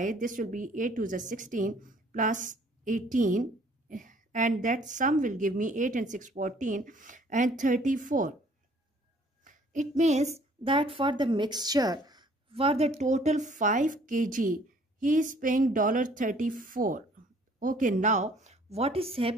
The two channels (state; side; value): normal; both; correlation 0.58